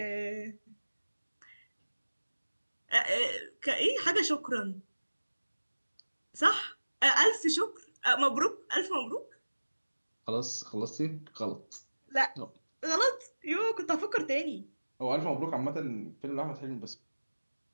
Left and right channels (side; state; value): both; inverted; correlation -1.00